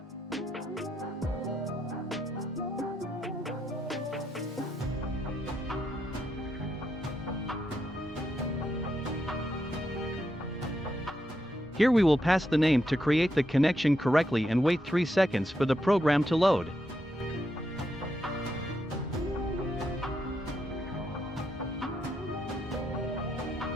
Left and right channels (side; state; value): both; normal; correlation 0.81